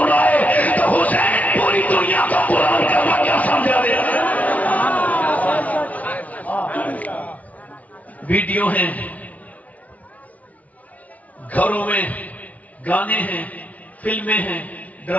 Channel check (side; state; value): right; late; 0.070 ms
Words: تو حسین پوری دنیا کو قرآن کا مطلب سمجھا دیتا ہے. ویڈیو ہیں, گھروں میں گانے ہیں, فلمیں ہیں,